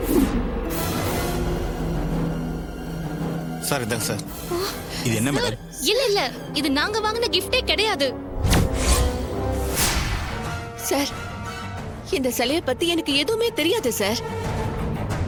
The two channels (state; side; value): identical; both; correlation 1.00